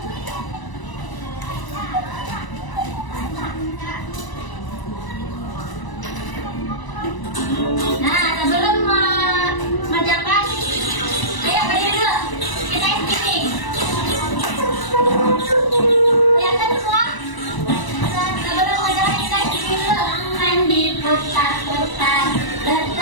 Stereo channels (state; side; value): late; right; 1.0 ms